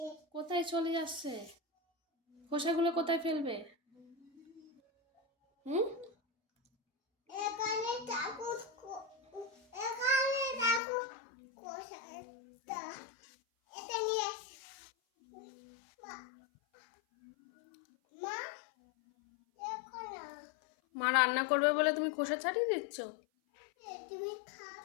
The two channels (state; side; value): drops out; right; at 10.8 s